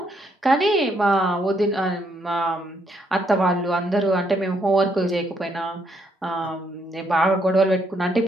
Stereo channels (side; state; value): both; normal; correlation 0.73